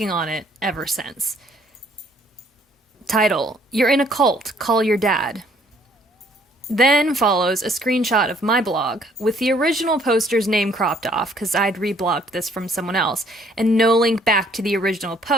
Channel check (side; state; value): both; normal; correlation 0.62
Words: on it ever since. Title: You're in a cult, call your dad. Then follows a screenshot of my blog, with the original poster's name cropped off, because I'd reblogged this from someone else, and no link back to the original